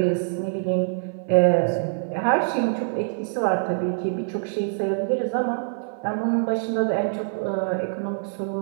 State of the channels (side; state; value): left; silent; 61 dB below the other